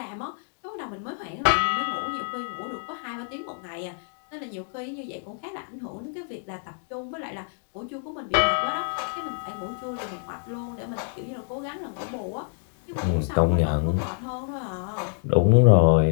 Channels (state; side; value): silent; right; 60 dB below the other